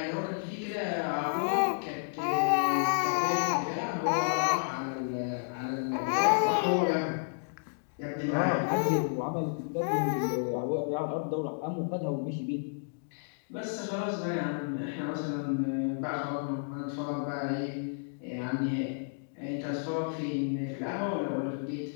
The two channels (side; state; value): right; silent; digital silence